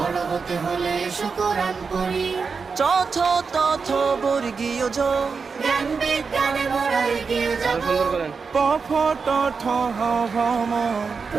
হতে হলে এসো কোরআন পড়ি। চথ তথ বর্গীয় জ, জ্ঞান বিজ্ঞানে মোরা এগিয়ে যাব। প ফ ট ঠ হ ভ ম,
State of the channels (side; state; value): left; quieter; 5.1 dB